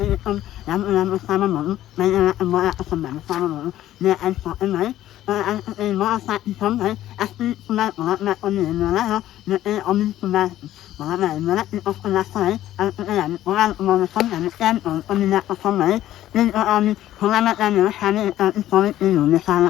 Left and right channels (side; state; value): right; quieter; 13.3 dB